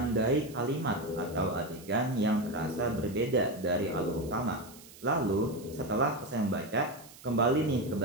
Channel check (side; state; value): right; noise; hiss, 20 dB below the sound